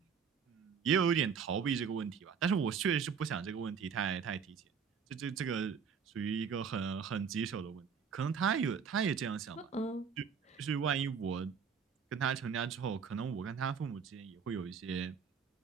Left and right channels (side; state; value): left; quieter; 6.5 dB